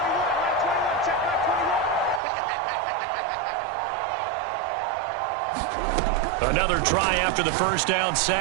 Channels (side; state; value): left; drops out; at 2.2 s